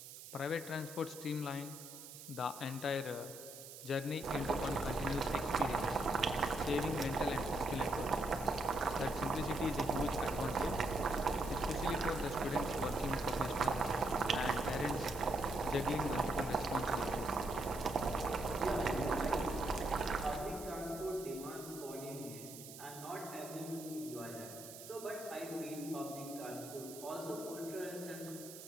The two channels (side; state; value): right; noise; hiss, 13 dB below the sound